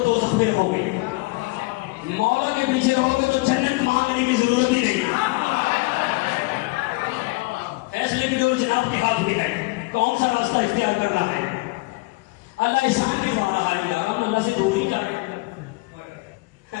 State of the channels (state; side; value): quieter; right; 24.2 dB